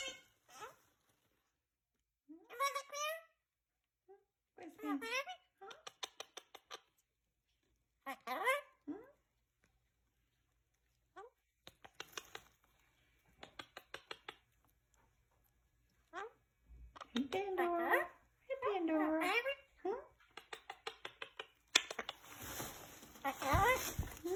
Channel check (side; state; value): both; identical; correlation 1.00